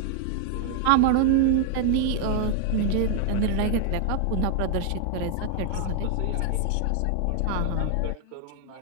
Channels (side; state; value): both; different; correlation 0.00